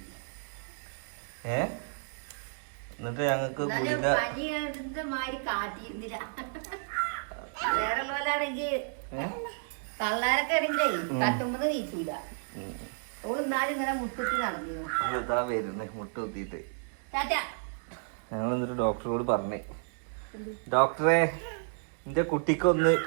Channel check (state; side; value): silent; left; digital silence